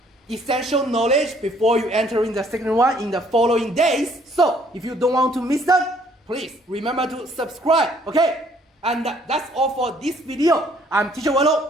essential knowledge before you enter in the Secondary 1 in the following days. So if you don't want to miss them, please remember to subscribe, okay? And that's all for this video. I'm Teacher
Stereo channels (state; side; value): normal; both; correlation 0.62